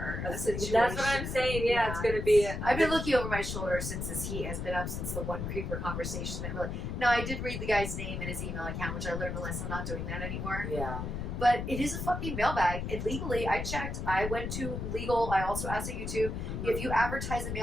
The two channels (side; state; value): left; noise; rumble, 4 dB below the sound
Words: A situation. That's what I'm saying. Yeah, it's going to be. I've been looking over my shoulder since this heat has been up since the one Creeper Conversation. That really. No, I did read the guy's name and his email account, which I learned a lesson. I'm not doing that anymore. Yeah. But it is a fucking mailbag. And legally, I checked. I went to legal. I also asked at YouTube. If you advertise a